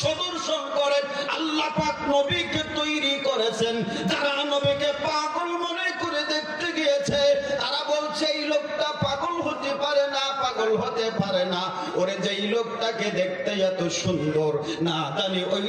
সদর্শন করেন আল্লাহ পাক নবীকে তৈরি করেছেন। যারা নবীকে পাগল মনে করে দেখতে গিয়েছে, তারা বলছে এই লোকটা পাগল হতে পারে না, পাগল হতে পারে না। ওরে যেই লোকটাকে দেখতে এত সুন্দর, না জানি ওই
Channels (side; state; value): both; identical; correlation 1.00